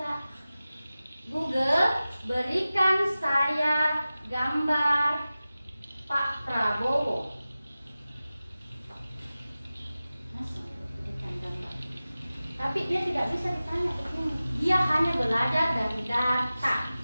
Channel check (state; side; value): inverted; both; correlation -0.96